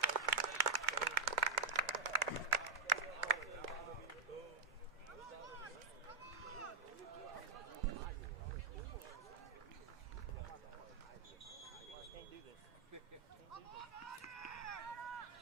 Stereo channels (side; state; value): left; quieter; 4.3 dB